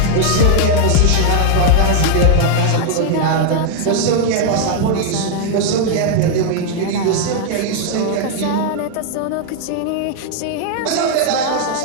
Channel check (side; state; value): both; different; correlation 0.00